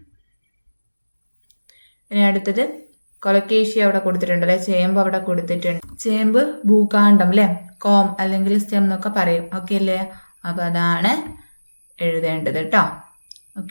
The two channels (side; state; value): both; inverted; correlation -1.00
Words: ഇനി അടുത്തത് കൊലക്കേഷ്യ അവിടെ കൊടുത്തിട്ടുണ്ട് അല്ലെ, ചേമ്പ് അവിടെ കൊടുത്തിട്ടുണ്ട്. ചേമ്പ് ഭൂകാണ്ഡം അല്ലെ, കോം അല്ലെങ്കിൽ സ്റ്റെം എന്നൊക്കെ പറയും. ഓക്കെ അല്ലേ? അപ്പോൾ അതാണ് എഴുതേണ്ടത് കേട്ടോ.